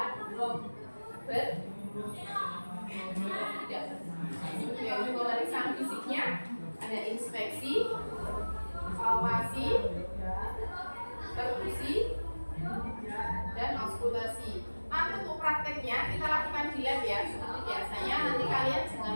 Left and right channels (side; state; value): both; inverted; correlation -1.00